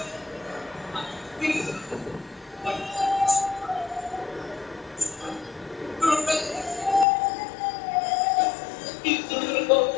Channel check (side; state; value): right; drops out; at 7.1 s